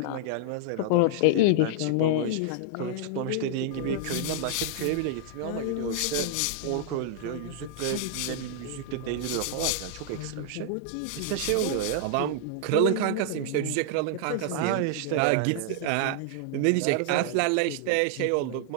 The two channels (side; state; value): both; different; correlation -0.01